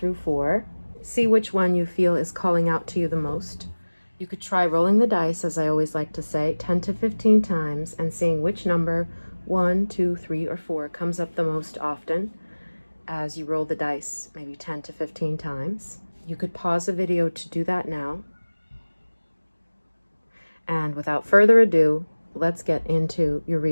4. See which one you feel is calling out to you the most. You could try rolling the dice, as I always like to say, 10 to 15 times and seeing which number, 1, 2, 3, or 4, comes up the most often as you roll the dice, maybe 10 to 15 times. You could pause the video to do that now. And without further ado, let's get into your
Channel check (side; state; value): both; inverted; correlation -1.00